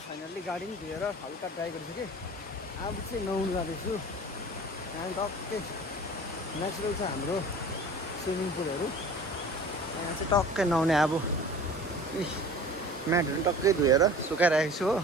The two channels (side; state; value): both; normal; correlation 0.42